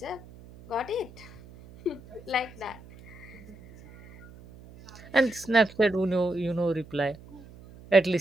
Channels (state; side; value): noise; right; hum, 20 dB below the sound